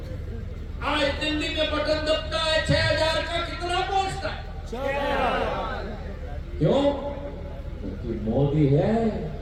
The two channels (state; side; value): identical; both; correlation 1.00